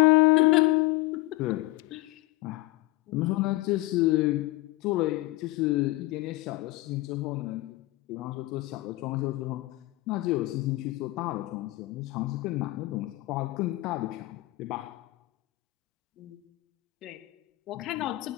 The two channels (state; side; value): quieter; right; 20.0 dB